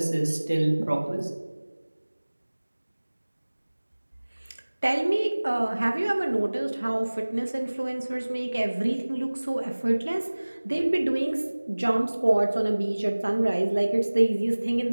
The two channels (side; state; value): both; inverted; correlation -1.00